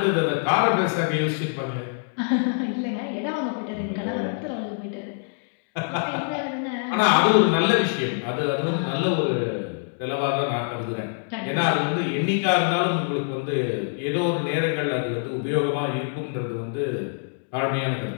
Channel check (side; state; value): right; silent; digital silence